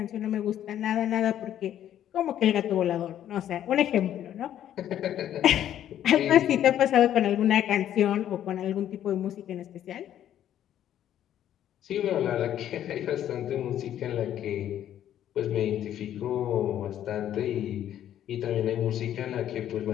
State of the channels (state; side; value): quieter; right; 11.1 dB